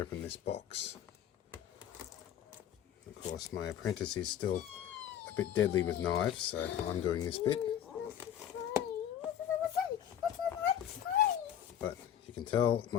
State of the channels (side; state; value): right; quieter; 10.0 dB